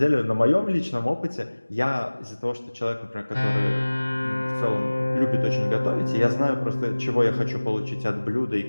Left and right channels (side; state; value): both; inverted; correlation -1.00